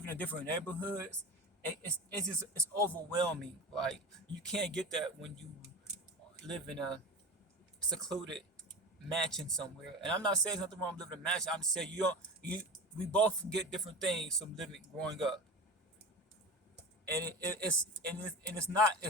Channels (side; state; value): both; normal; correlation 0.29